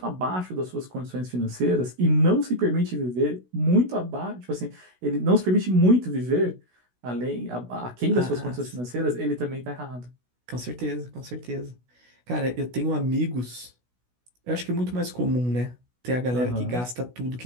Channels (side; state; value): left; late; 16 ms